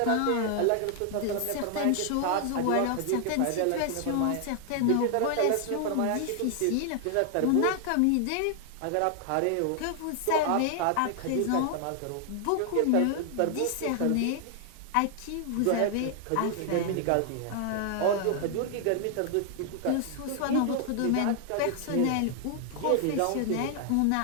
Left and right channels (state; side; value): different; both; correlation 0.00